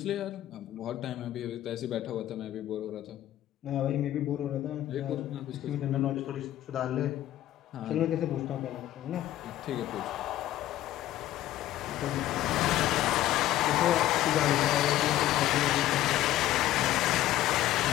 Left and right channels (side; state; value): right; quieter; 13.9 dB